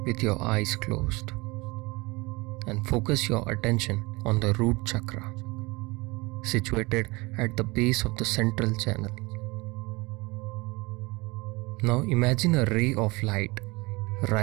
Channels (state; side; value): quieter; left; 24.5 dB